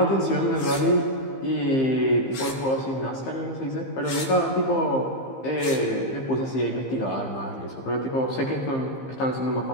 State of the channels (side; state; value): right; late; 15 ms